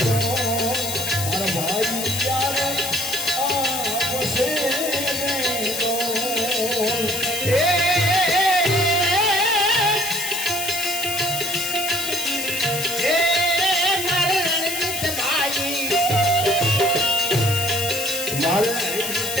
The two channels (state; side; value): noise; left; hiss, 4 dB below the sound